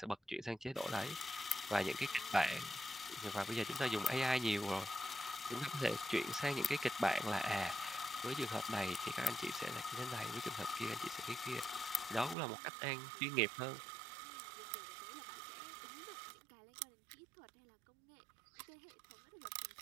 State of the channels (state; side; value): drops out; left; at 12.4 s